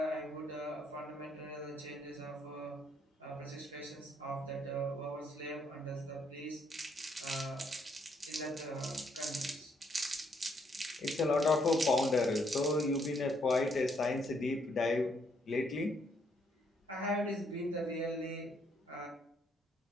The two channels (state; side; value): normal; both; correlation 0.72